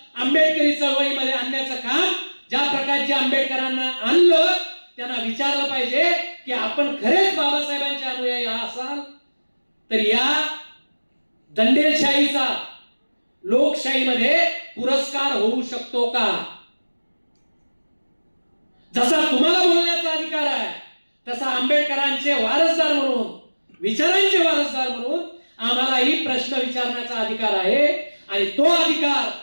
आंबेडकरी चळवळीमध्ये आणण्याचं काम ज्या प्रकारचे आंबेडकरांना आणलं त्यांना विचारलं पाहिजे की आपण खरेच बाबासाहेबांचे अनुयायी असाल तर या दंडेलशाहीचा लोकशाहीमध्ये पुरस्कार होऊ शकतो का? जसा तुम्हाला बोलण्याचा अधिकार आहे तसा आंबेडकरांचे वारसदार म्हणून, विचारांचे वारसदार म्हणून आम्हालाही प्रश्न विचारण्याचा अधिकार आहे. आणि तो अधिकार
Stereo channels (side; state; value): both; inverted; correlation -1.00